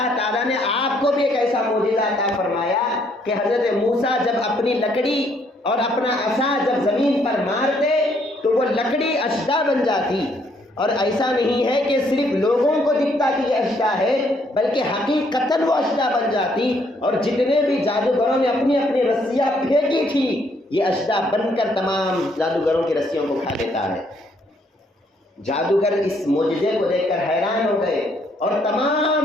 تعالیٰ نے آپ کو بھی ایک ایسا معجزہ عطا فرمایا کہ حضرت موسیٰ جب اپنی لکڑی اور اپنا عصا جب زمین پر مارتے تو وہ لکڑی اشدا بن جاتی، اور ایسا نہیں ہے کہ صرف لوگوں کو دکھتا کہ یہ اشدا ہے، بلکہ حقیقتاً وہ اشدا بن جاتی، اور جتنے بھی جادوگروں نے اپنی اپنی رسیاں پھینکی تھی، یہ اشدا بن کر تمام جادوگروں کی رسیوں کو کھا لیتا ہے۔ جادوگر اس معجزے کو دیکھ کر حیران ہو گئے اور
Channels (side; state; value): both; normal; correlation 0.69